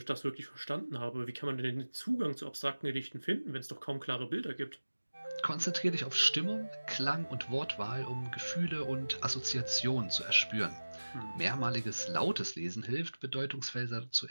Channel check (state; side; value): inverted; both; correlation -1.00